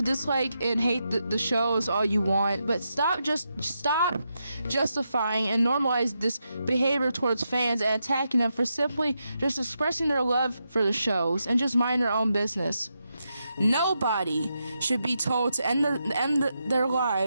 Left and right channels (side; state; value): both; inverted; correlation -0.85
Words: dislike and hate the shows all you want, but stop justifying and normalize this behavior towards fans and attacking them for simply just expressing their love for the shows and just mind their own business. Nobody should be told to end their